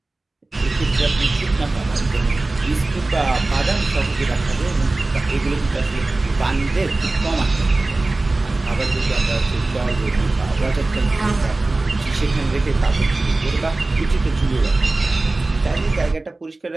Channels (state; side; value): quieter; left; 3.1 dB